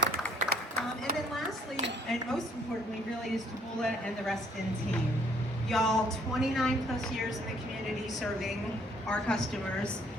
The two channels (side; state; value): both; normal; correlation 0.63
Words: And then lastly, and most importantly, really, is Taboola and the Reston team. Y'all, 29 plus years in the community serving our customers.